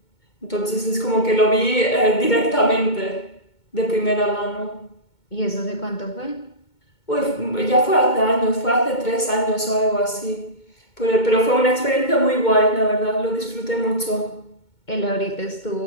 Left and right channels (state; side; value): late; right; 2.2 ms